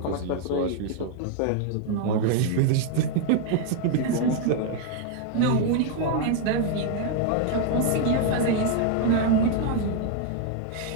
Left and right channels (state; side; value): different; both; correlation 0.00